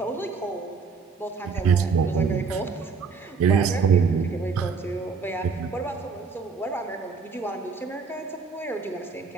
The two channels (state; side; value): quieter; left; 5.3 dB